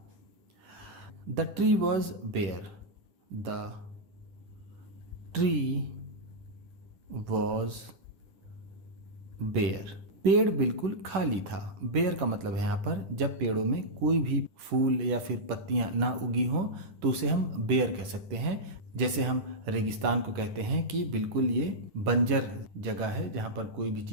The tree was bare, the tree was bare, पेड़ बिल्कुल खाली था। बेयर का मतलब है यहाँ पर जब पेड़ों में कोई भी फूल या फिर पत्तियां ना उगी हों तो उसे हम बेयर कह सकते हैं। जैसे हम रेगिस्तान को कहते हैं कि बिल्कुल ये बंजर जगह है जहाँ पर कोई भी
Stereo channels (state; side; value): late; left; 10 ms